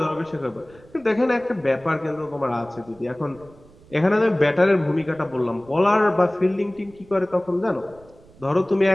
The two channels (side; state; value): right; noise; rumble, 25 dB below the sound